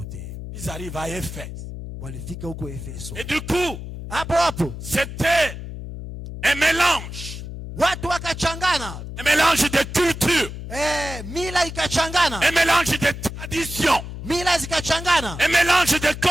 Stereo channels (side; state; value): left; noise; hum, 9 dB below the sound